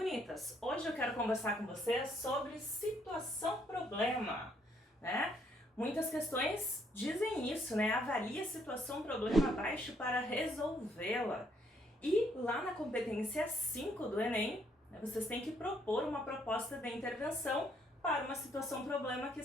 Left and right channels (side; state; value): both; normal; correlation 0.69